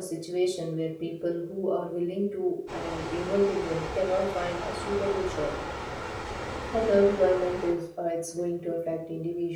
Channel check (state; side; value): identical; both; correlation 1.00